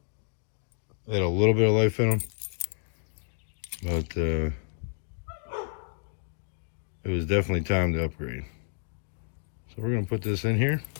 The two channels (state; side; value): silent; right; digital silence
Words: They had a little bit of life in them. But it was definitely time to upgrade. So we're going to put this in here.